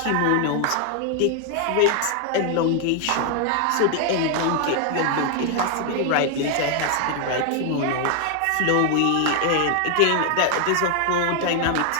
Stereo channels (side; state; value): both; different; correlation 0.00